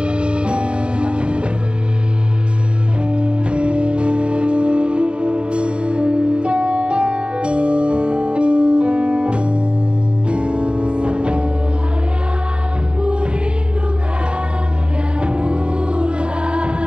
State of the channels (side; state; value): left; late; 0.053 ms